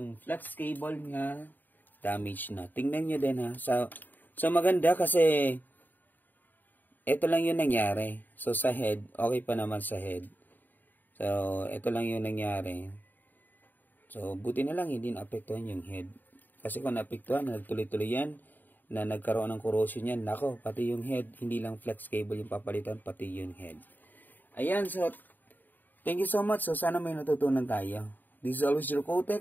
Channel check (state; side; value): late; right; 0.089 ms